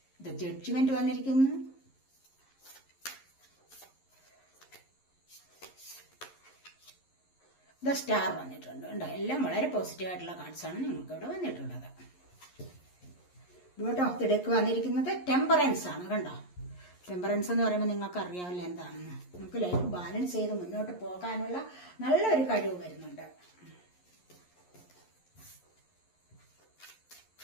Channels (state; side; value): late; right; 11 ms